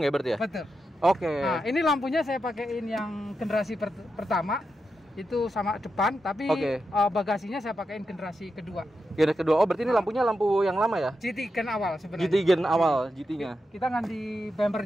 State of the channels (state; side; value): normal; both; correlation 0.87